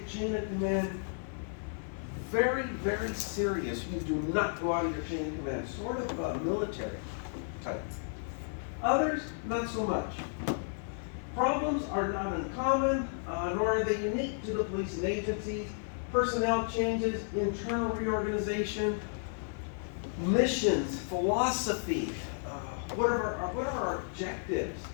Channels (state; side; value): silent; right; digital silence